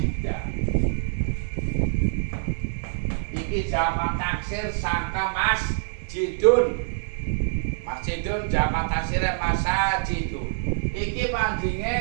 Iki jamak taksir sangka masjidun. Masjidun jamak taksirnya masajidun. Iki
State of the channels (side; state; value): left; silent; 59 dB below the other